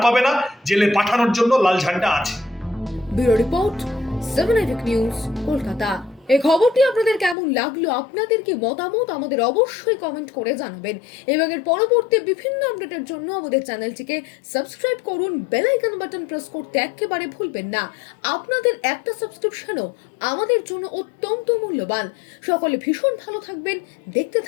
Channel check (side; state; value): right; drops out; at 7.4 s